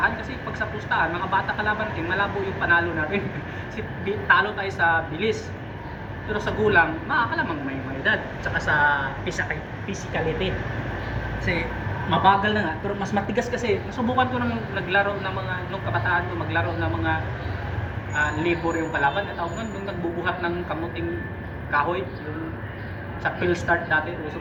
Kasi pag sa pustahan, mga bata kalaban natin, malabo yung panalo natin. Kasi talo tayo sa bilis. Pero sa gulang, makakalamang may edad. Tsaka sa physicality. Kasi mabagal na nga, pero mas matigas kasi. Nasubukan ko nang naglaro ng mga, nung kabataan ko, maglaro ng mga labor yung kalaban. At ako nung nagbubuhat ng kamuting kahoy, yung sa Phil Start dati, uso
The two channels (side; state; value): both; identical; correlation 1.00